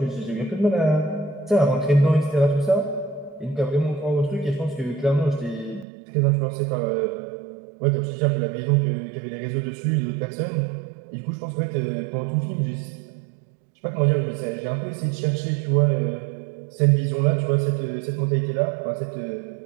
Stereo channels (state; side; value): drops out; left; at 5.9 s